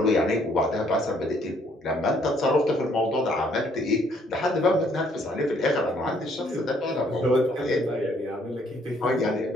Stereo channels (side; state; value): both; normal; correlation 0.65